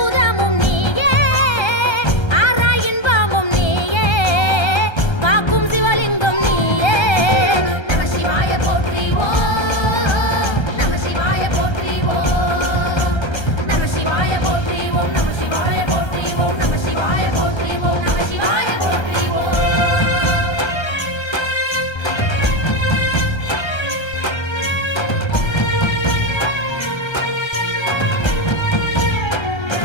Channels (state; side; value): late; right; 1.3 ms